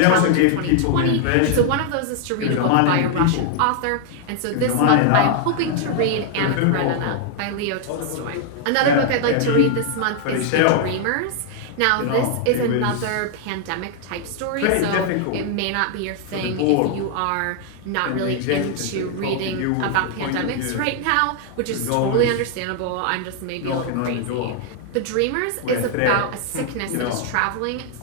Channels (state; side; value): different; both; correlation 0.00